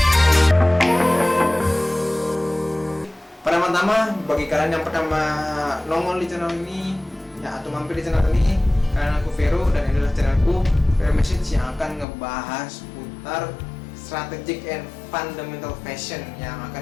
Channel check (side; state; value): right; drops out; at 12.1 s